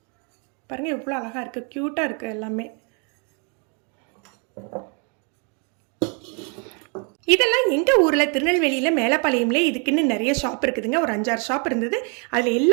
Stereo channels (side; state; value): left; quieter; 36.8 dB